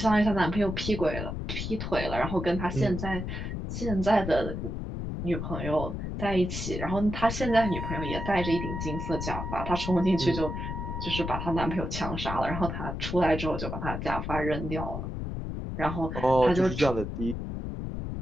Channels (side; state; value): left; noise; rumble, 5 dB below the sound